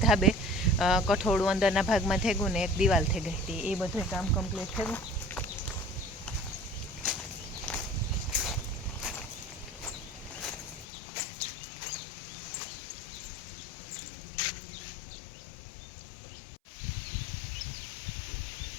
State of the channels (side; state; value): right; drops out; at 10.9 s